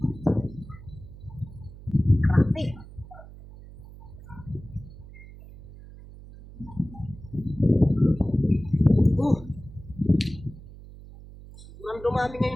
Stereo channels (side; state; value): right; noise; hum, 17 dB below the sound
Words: Grabe. Sobrang dumami